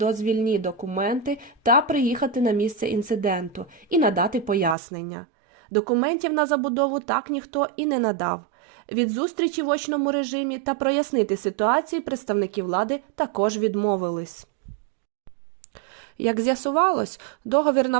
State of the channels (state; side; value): drops out; left; at 4.8 s